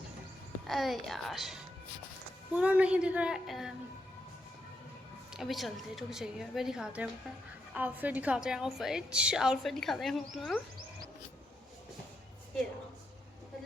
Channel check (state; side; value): normal; both; correlation 0.82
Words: अरे यार, पूरा नहीं दिख रहा है। अभी चलते, रुक जाइए, अभी दिखाते हैं अपना आउटफिट दिखाते हैं हम अपना। ये